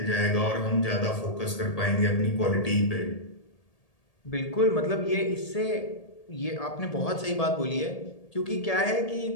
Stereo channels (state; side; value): late; right; 1.8 ms